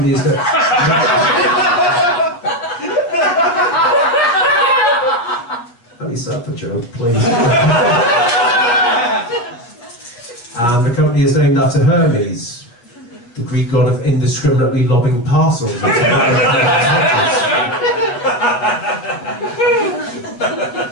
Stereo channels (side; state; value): right; late; 8.4 ms